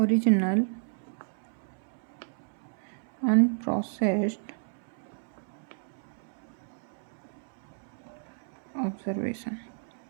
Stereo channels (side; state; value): left; silent; 57 dB below the other